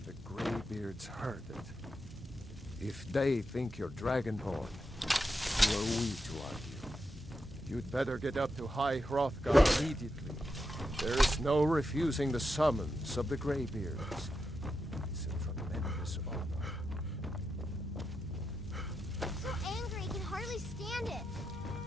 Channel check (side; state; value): both; normal; correlation 0.86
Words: the Greybeards heard it. If they think you're Dragonborn, who are we to argue? You'd better get up to High Hrothgar immediately. There is no refusing the summons of the Greybeards. It's a tremendous honor. I'm so angry, I can hardly stand it.